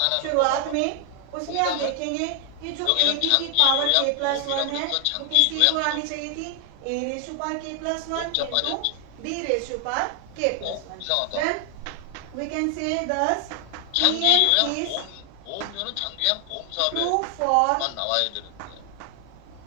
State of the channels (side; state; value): both; different; correlation 0.00